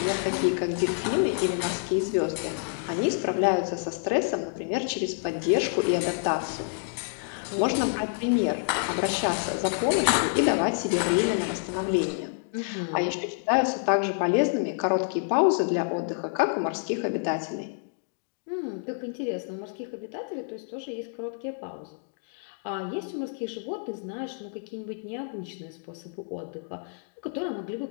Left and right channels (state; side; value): silent; right; digital silence